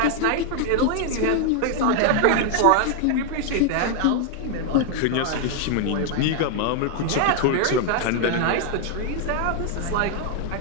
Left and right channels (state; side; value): different; both; correlation 0.00